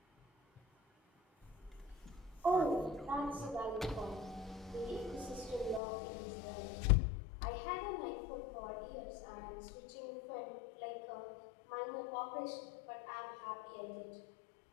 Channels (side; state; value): right; drops out; at 5.8 s